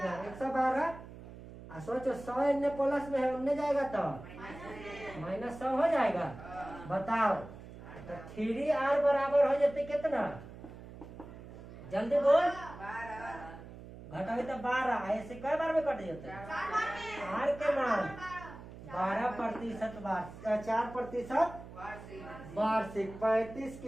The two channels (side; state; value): right; noise; hum, 15 dB below the sound